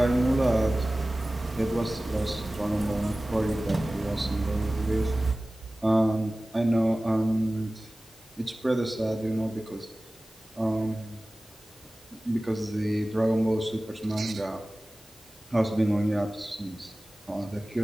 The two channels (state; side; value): normal; both; correlation 0.97